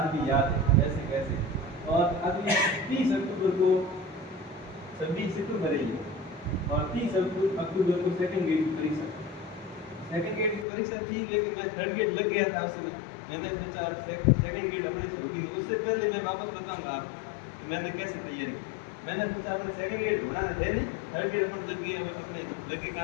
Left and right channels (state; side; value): drops out; right; at 10.7 s